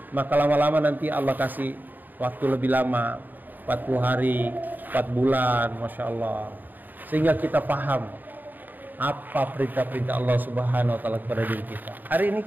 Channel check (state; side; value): late; left; 0.088 ms